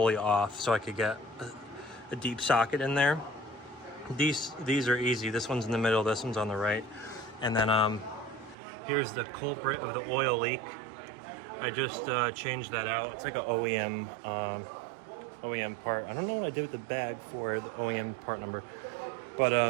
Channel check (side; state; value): left; drops out; at 8.6 s